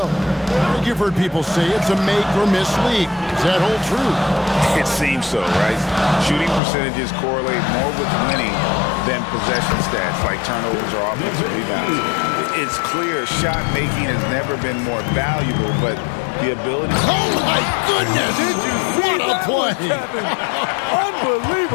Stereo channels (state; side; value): drops out; right; at 6.6 s